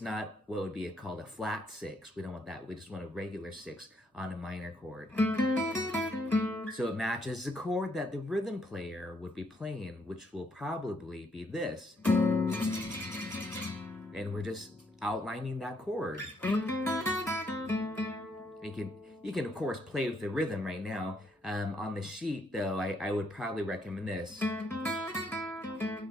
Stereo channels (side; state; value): both; normal; correlation 0.72